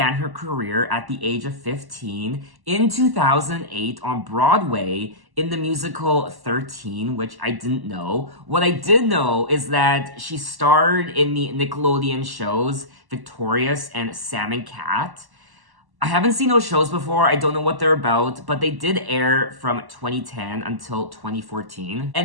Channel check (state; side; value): late; left; 1.1 ms